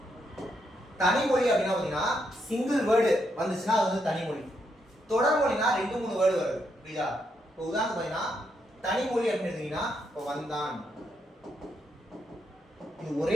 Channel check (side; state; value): both; normal; correlation 0.79